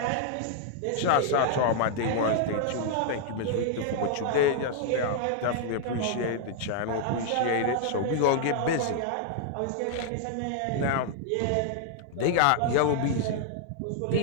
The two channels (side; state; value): both; different; correlation -0.01